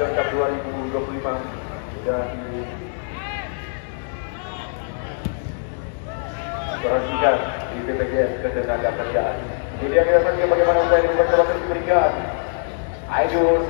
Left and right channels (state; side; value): silent; right; digital silence